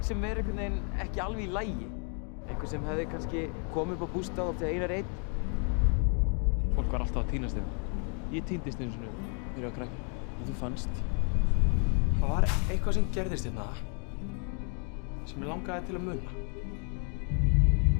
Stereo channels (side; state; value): right; quieter; 38.8 dB